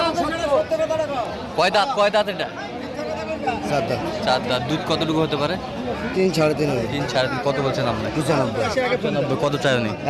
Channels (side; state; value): both; identical; correlation 1.00